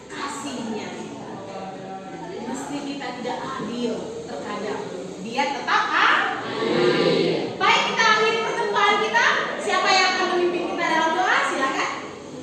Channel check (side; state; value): both; identical; correlation 1.00